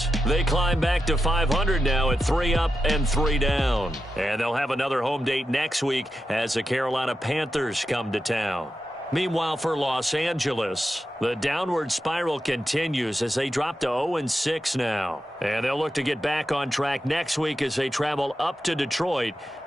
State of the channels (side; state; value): both; normal; correlation 0.89